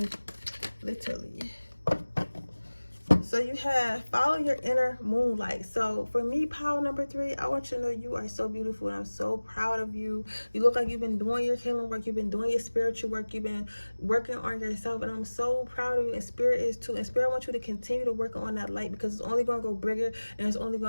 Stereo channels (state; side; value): inverted; both; correlation -1.00